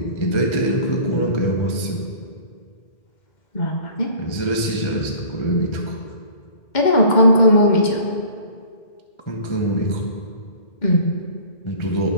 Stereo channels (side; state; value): right; late; 2.1 ms